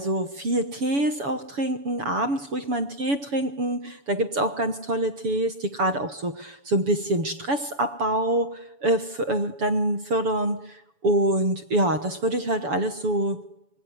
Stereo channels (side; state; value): left; late; 7.0 ms